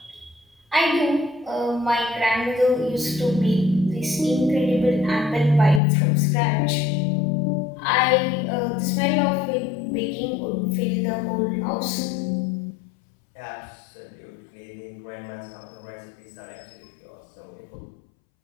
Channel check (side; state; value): right; drops out; at 5.8 s